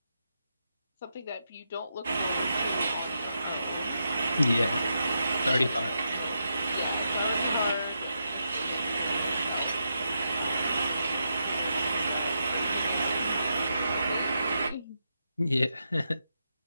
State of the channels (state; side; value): inverted; both; correlation -0.84